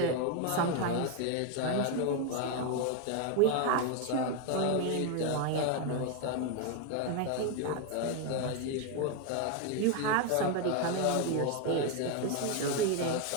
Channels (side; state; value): both; different; correlation 0.01